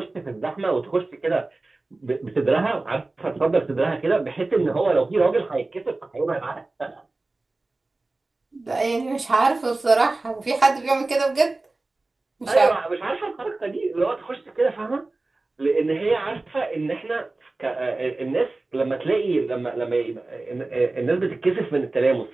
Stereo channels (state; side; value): quieter; left; 3.2 dB